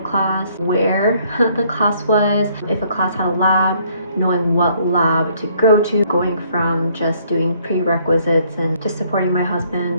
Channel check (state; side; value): inverted; both; correlation -0.65